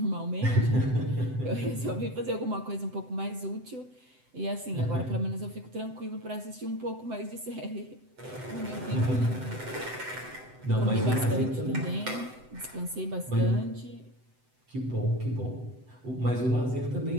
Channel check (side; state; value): left; late; 7.9 ms